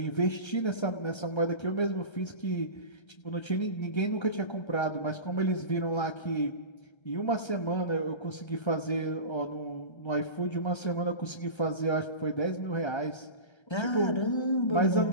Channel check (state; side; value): late; right; 1.3 ms